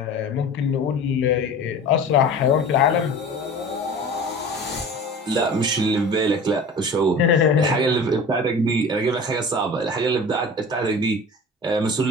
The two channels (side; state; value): both; normal; correlation 0.38